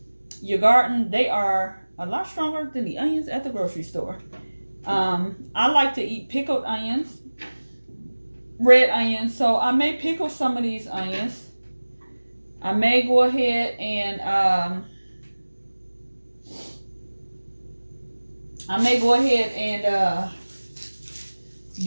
your garden, they are a lot stronger than the onions at the grocery store. I like to eat pickled onions. red onions. So I may pickle some of these onions. I may go ahead and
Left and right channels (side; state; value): both; inverted; correlation -1.00